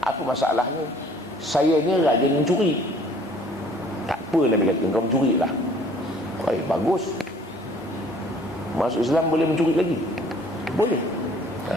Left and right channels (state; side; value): normal; both; correlation 0.56